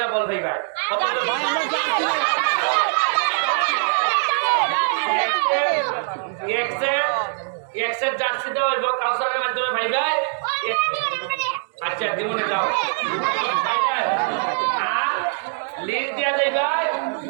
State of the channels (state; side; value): silent; left; digital silence